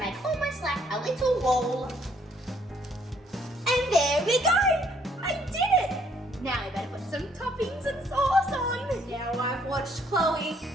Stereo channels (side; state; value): both; normal; correlation 0.66